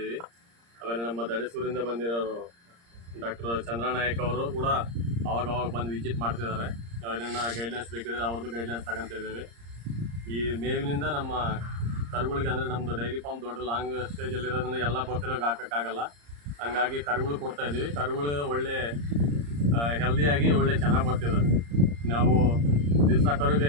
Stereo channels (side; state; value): left; late; 34 ms